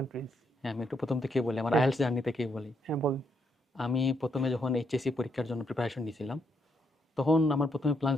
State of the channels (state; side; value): normal; both; correlation 0.76